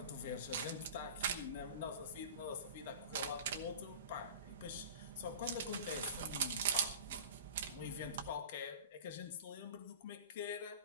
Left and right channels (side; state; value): both; inverted; correlation -0.37